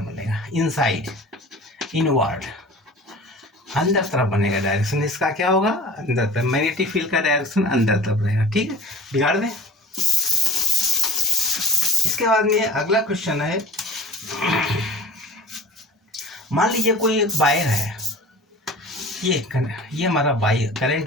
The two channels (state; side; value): normal; both; correlation 0.42